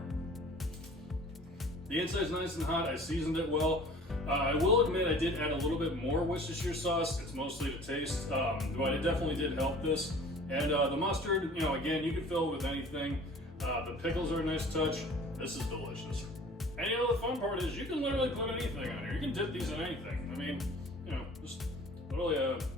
The inside's nice and hot. I seasoned it well. I will admit I did add a little bit more Worcestershire sauce. It's mostly to taste, but it definitely did help this. And the mustard, you know, again, you can fill it with anything. The pickles are a nice touch. This is delicious. And you know, the fun part is you can literally put anything on here. You can dip these in anything. I mean, you know, just really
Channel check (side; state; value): both; normal; correlation 0.47